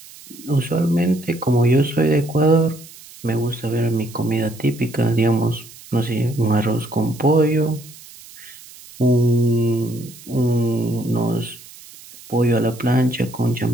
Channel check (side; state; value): right; noise; hiss, 20 dB below the sound